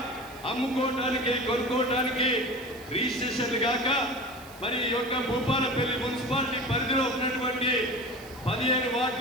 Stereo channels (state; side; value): noise; right; hiss, 21 dB below the sound